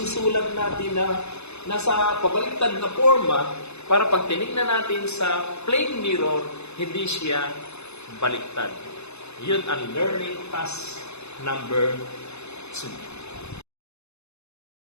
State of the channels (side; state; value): right; late; 0.80 ms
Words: natin na nasa pabaliktad na forma para pag tinignan natin sa plain mirror, hindi siya baliktad. Yun ang learning task number 2.